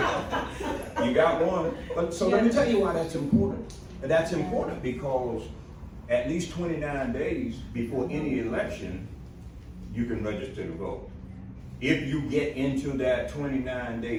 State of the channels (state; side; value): identical; both; correlation 1.00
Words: You got one. But so let me tell you why that's important. That's important because at least 29 days before any election, you can register to vote. If you get into that